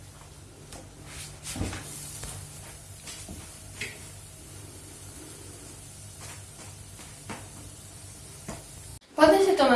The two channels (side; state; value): both; identical; correlation 1.00